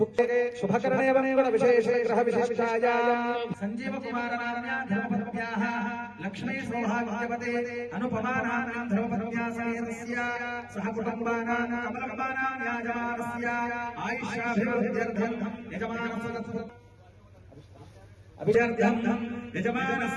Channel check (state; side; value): identical; both; correlation 1.00